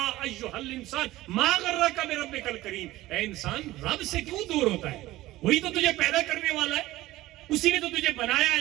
ایھا الانسان ما غرک بربک الکریم. اے انسان، رب سے کیوں دور ہوتا ہے؟ وہی تو تجھے پیدا کرنے والا ہے، اسی نے تو تجھے بنایا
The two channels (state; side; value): quieter; left; 16.8 dB